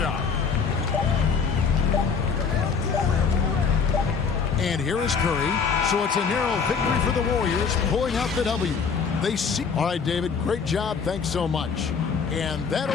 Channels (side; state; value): right; quieter; 5.8 dB